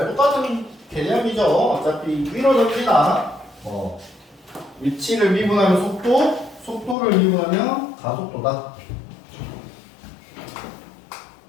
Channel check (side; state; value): right; drops out; at 7.0 s